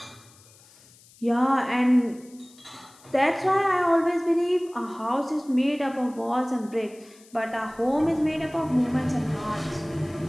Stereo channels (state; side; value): noise; left; hiss, 26 dB below the sound